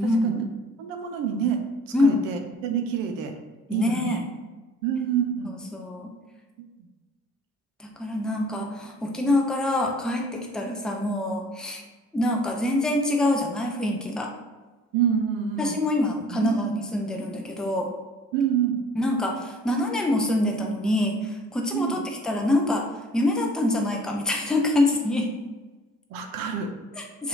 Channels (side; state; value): both; normal; correlation 0.52